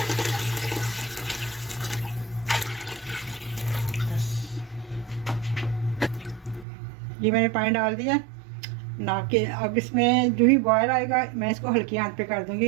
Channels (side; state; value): left; drops out; at 6.7 s